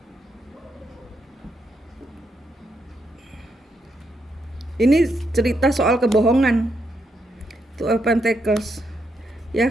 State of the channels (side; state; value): both; normal; correlation 0.80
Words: Ini cerita soal kebohongan. Two of Pentacles. Ya,